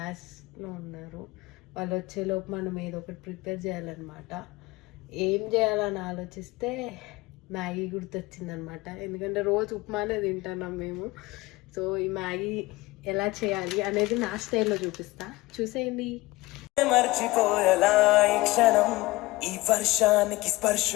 ఉన్నారు. వాళ్ళు వచ్చేలోపు మనం ఏదో ఒకటి ప్రిపేర్ చేయాలన్నమాట. ఏం చేయాలని ఆలోచిస్తే మ్యాగీ గుర్తొచ్చిందనమాట. ఎందుకంటే రోజు ఉప్మానే తింటున్నాం మేము. సో ఈ మ్యాగీ ఎలా చేయాలి అనేది నా స్టైల్లో చూపిస్తా, చూసేయండి. మర్చిపోయేలా ఈ క్షణం, ఈ వర్షానికి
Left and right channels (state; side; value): quieter; right; 20.8 dB